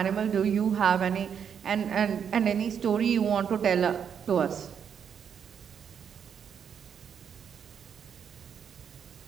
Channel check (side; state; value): left; quieter; 7.7 dB